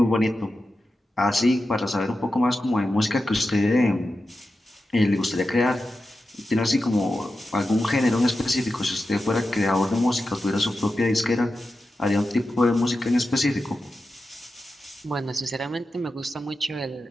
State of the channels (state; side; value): normal; both; correlation 0.91